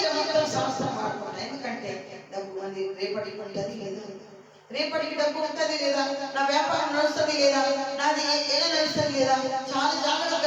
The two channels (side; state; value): both; identical; correlation 1.00